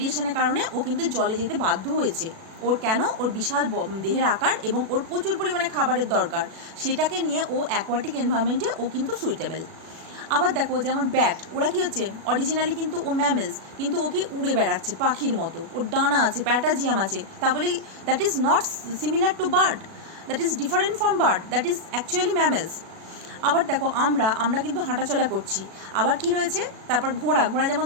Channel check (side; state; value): left; late; 37 ms